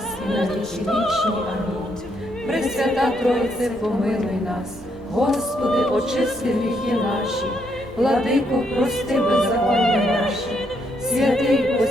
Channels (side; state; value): both; normal; correlation 0.75